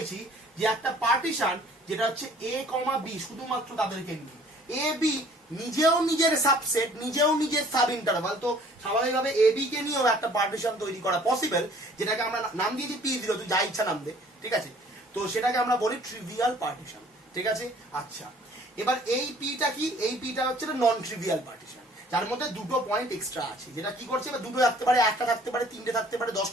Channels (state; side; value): normal; both; correlation 0.55